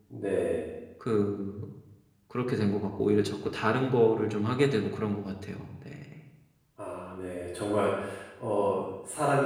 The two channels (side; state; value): both; identical; correlation 1.00